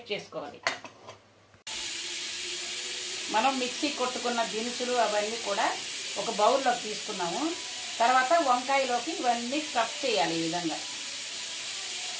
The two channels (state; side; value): identical; both; correlation 1.00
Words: చేసుకోవాలి. మనం మిక్సీ కొట్టుకున్న దినుసులు అవన్నీ కూడా ఒక బౌల్లోకి తీసుకున్నాము. తర్వాత వంకాయలోకి ఇవన్నీ స్టఫ్ చేయాలి. ఈ విధంగా